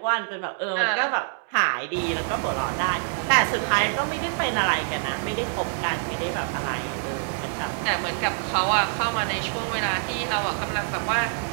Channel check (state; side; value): silent; left; 61 dB below the other